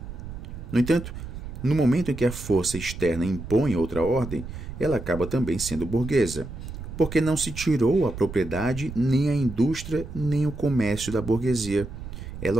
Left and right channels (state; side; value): noise; right; rumble, 10 dB below the sound